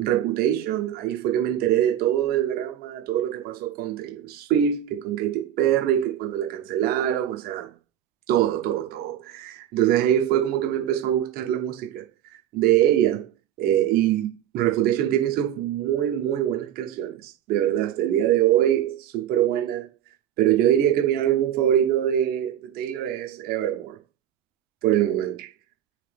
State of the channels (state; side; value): quieter; left; 11.0 dB